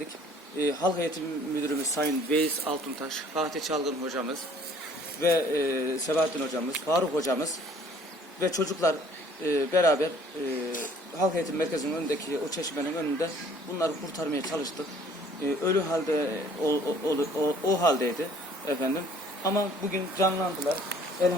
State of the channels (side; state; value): both; normal; correlation 0.56